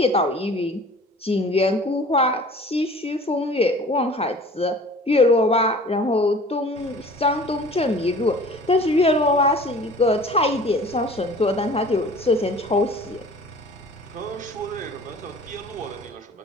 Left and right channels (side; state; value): both; normal; correlation 0.45